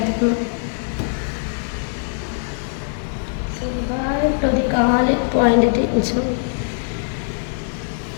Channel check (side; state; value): right; silent; digital silence